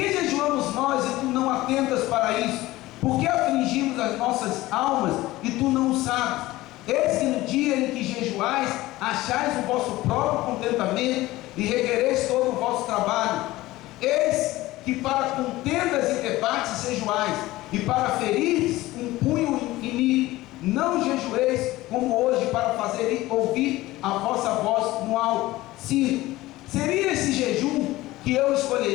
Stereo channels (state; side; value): quieter; right; 17.9 dB